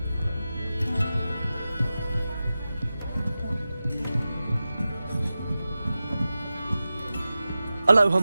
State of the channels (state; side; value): inverted; both; correlation -0.94